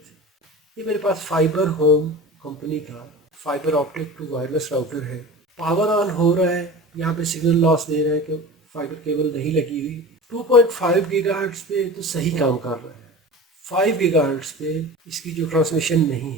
ये मेरे पास फाइबर होम कंपनी का fibre optic to wireless router है। पावर ऑन हो रहा है, यहाँ पे सिग्नल लॉस दे रहा है कि फाइबर केबल नहीं लगी हुई। 2.5 गीगाहर्ट्ज़ पे तो सही काम कर रहा है। 5 गीगाहर्ट्ज़ पे इसकी जो ट्रांसमिशन नहीं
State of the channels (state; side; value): normal; both; correlation 0.35